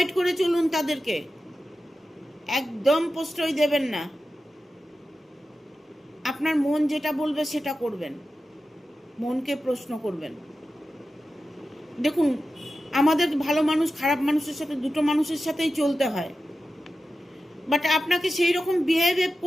করে চলুন তাদেরকে, একদম প্রশ্রয় দেবেন না। আপনার মন যেটা বলবে সেটা করবেন, মনকে প্রশ্ন করবেন। দেখুন আমাদের ভালো মানুষ খারাপ মানুষের সাথে দুটো মানুষের সাথেই চলতে হয়, বাট আপনাকে সেই রকম বিহেভ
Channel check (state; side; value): normal; both; correlation 0.92